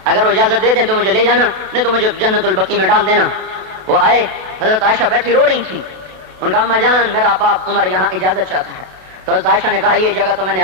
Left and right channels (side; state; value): left; late; 32 ms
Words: اگر وہ اجازت دے دیں تو مجھے لے جانا، نہیں تو مجھے جنت البقیع میں ڈال دینا۔ وہ آئے، حضرت عائشہ بیٹھی رو رہی تھی، ان کا اماں جان میرا باپ عمر یہاں اجازت چاہتا ہے۔ تو حضرت عائشہ نے کہا یہ جگہ تو میں نے